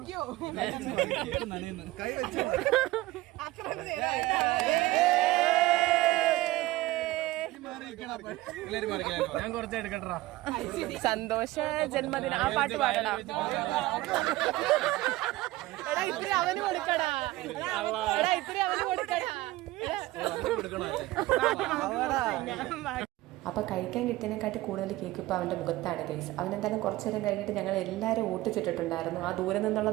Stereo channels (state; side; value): quieter; left; 18.1 dB